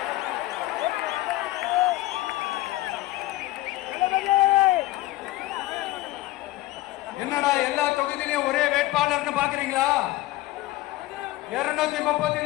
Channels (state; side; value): quieter; right; 17.5 dB